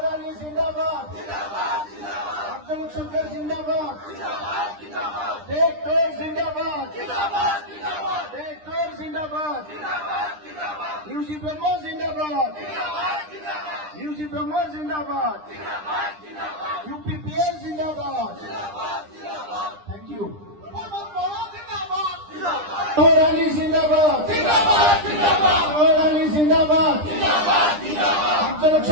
अली जिंदाबाद अफजल हक सरकार जिंदाबाद ट्रैक्टर जिंदाबाद ट्रैक्टर जिंदाबाद यूजी ब्रह्म जिंदाबाद यूजी ब्रह्म जिंदाबाद UPPL जिंदाबाद थैंक यू सोहेल अली जिंदाबाद सोहेल अली जिंदाबाद अफजल हक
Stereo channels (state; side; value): late; left; 9.9 ms